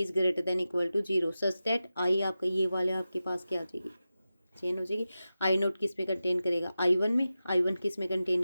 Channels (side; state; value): both; inverted; correlation -0.93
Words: greater than equal to 0 such that I आपका ये वाले आपके पास क्या आ जाएगी, चेंज हो जाएगी। आई नोट किस में कंटेन करेगा, आई वन में, आई वन किस में कंटेन